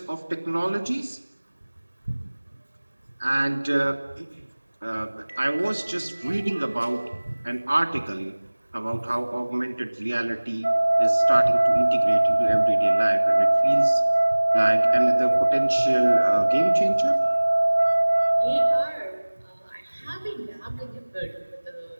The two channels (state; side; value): inverted; both; correlation -1.00